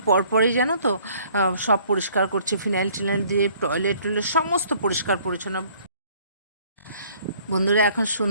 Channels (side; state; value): both; inverted; correlation -0.58